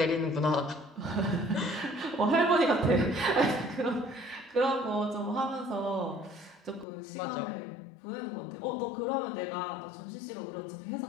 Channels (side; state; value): right; drops out; at 6.9 s